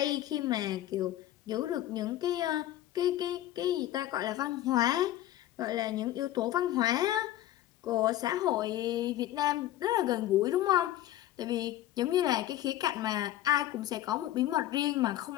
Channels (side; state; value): right; quieter; 13.7 dB